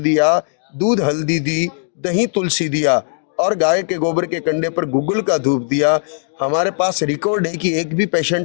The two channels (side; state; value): right; silent; digital silence